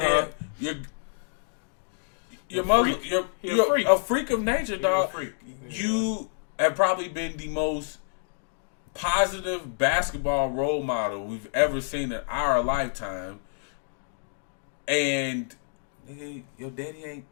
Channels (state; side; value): silent; right; digital silence